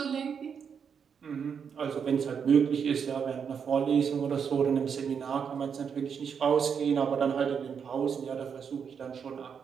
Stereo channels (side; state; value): left; quieter; 6.9 dB